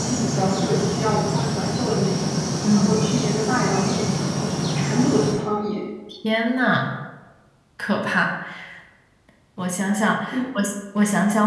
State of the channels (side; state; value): both; identical; correlation 1.00